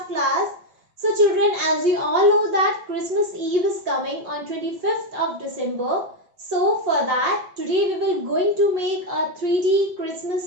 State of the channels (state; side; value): late; left; 5.6 ms